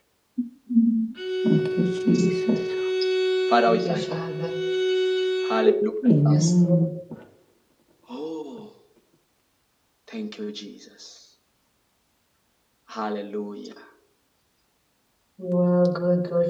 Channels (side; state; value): both; identical; correlation 1.00